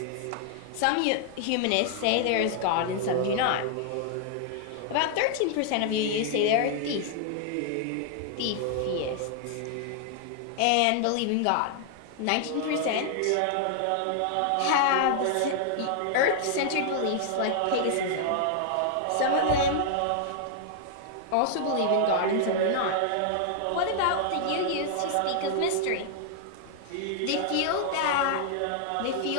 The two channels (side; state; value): both; different; correlation -0.01